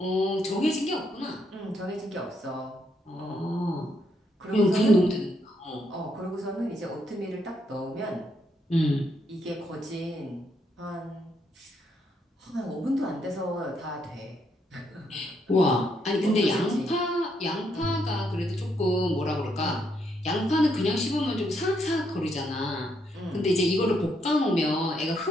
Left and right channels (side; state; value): both; normal; correlation 0.76